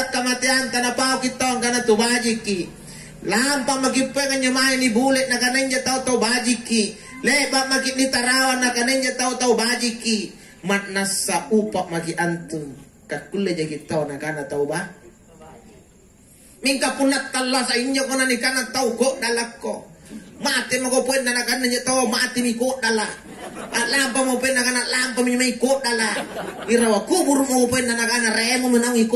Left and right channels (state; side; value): identical; both; correlation 1.00